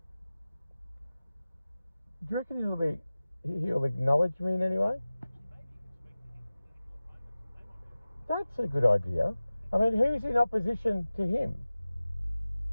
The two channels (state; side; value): inverted; both; correlation -0.97